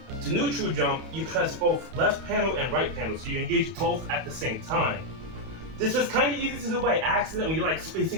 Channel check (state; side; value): late; left; 31 ms